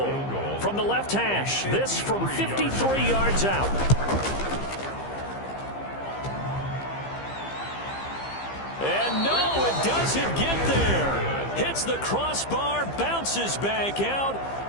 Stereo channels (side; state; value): right; late; 15 ms